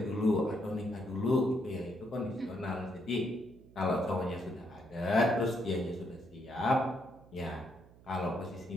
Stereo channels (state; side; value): noise; right; hum, 23 dB below the sound